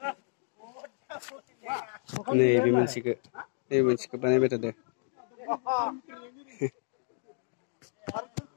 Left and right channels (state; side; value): silent; right; digital silence